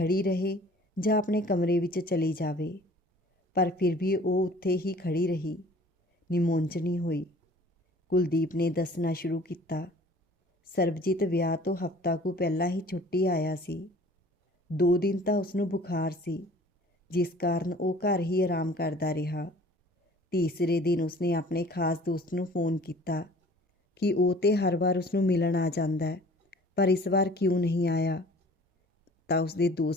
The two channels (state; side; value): normal; both; correlation 0.49